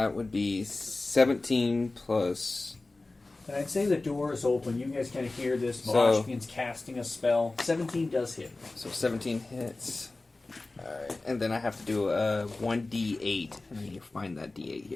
would be 17 plus. And I'd say the door is open. You guys kind of hear this. So- Vosh begins casting a spell. 17 does hit. So 17 hits. Alright, and then I have to do a 1d8. And I need to find that d8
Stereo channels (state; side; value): quieter; right; 3.2 dB